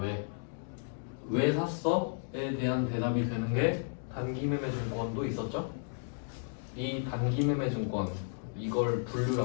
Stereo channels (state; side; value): silent; right; digital silence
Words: 왜 샀어?에 대한 대답이 되는 게 단기매매증권도 있었죠? 이 단기매매증권, 이걸